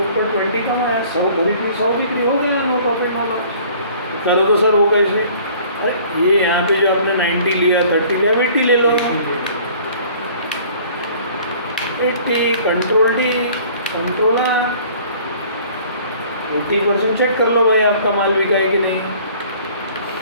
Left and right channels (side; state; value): both; inverted; correlation -0.52